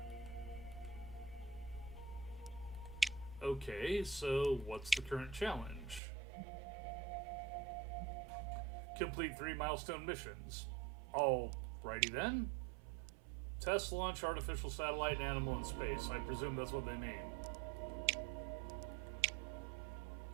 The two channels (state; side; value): drops out; left; at 6.0 s